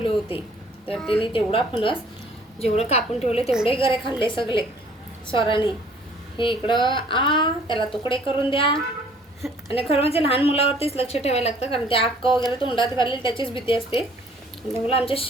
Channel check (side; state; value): both; normal; correlation 0.57